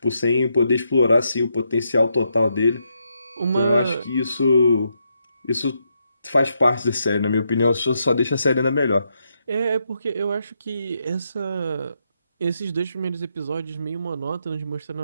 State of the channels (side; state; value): both; inverted; correlation -0.80